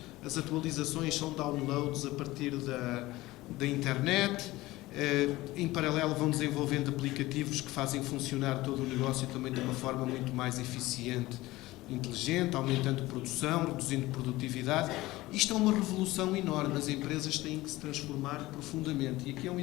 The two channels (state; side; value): quieter; right; 18.5 dB